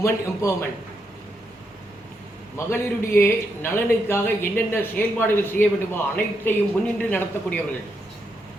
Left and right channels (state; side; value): normal; both; correlation 0.80